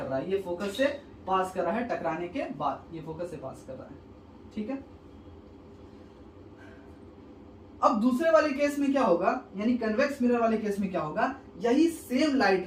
रहा है, ये फोकस से पास कर रहा है टकराने के बाद, ये फोकस से पास कर रहा है। ठीक है, अब दूसरे वाले केस में क्या होगा, यानी कन्वेक्स मिरर वाले केस में क्या होगा, यही सेम लाइट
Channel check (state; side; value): identical; both; correlation 1.00